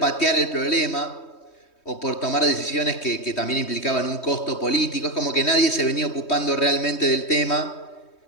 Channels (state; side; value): late; right; 3.2 ms